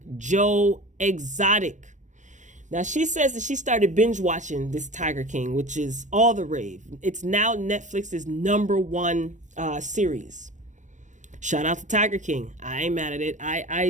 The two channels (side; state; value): left; late; 0.35 ms